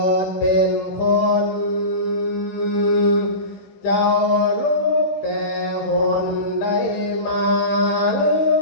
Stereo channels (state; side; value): late; right; 15 ms